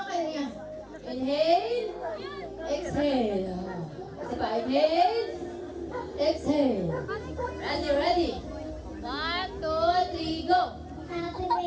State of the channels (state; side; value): identical; both; correlation 1.00